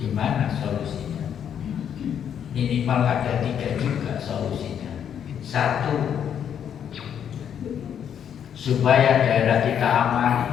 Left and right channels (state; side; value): quieter; right; 8.7 dB